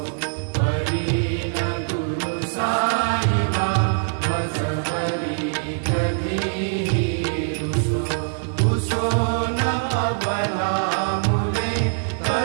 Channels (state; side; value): silent; left; 58 dB below the other